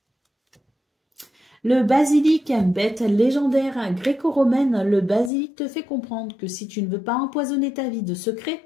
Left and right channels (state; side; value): drops out; right; at 5.3 s